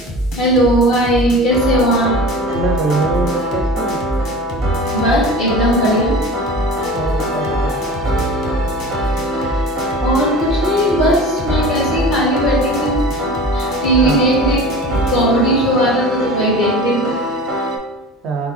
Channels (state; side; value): normal; both; correlation 0.37